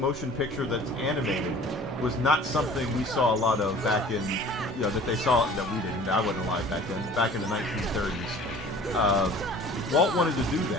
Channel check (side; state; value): both; normal; correlation 0.46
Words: picture that's animated was not something we saw a lot of back in. You know, that they saw, that we didn't. I wasn't alive back then. Back in the 1930s, Walt wanted to do